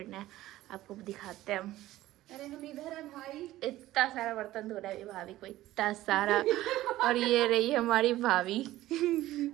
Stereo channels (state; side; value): quieter; left; 15.6 dB